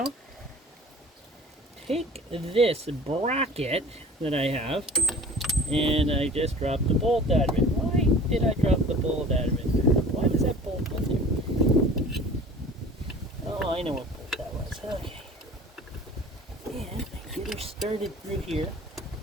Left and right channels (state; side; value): normal; both; correlation 0.43